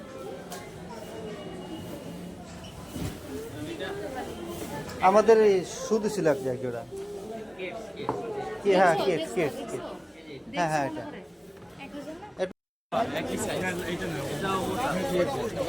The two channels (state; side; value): identical; both; correlation 1.00